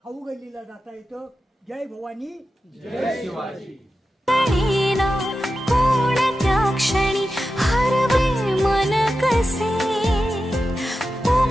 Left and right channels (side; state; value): both; normal; correlation 0.92